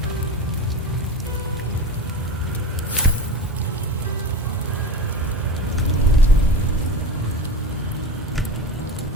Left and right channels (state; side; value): normal; both; correlation 0.29